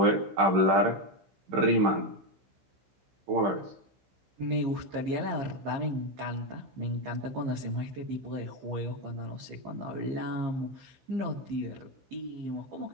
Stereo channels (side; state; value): left; late; 15 ms